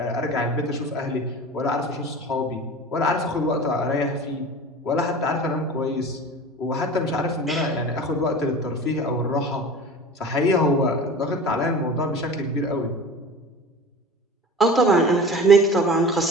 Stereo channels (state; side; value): normal; both; correlation 0.36